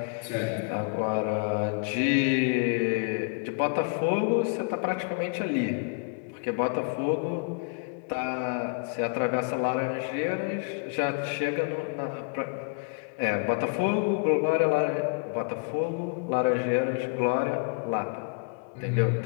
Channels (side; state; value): right; quieter; 40.0 dB